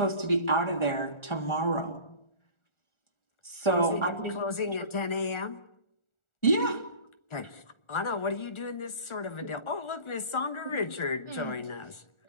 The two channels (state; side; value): late; right; 1.4 ms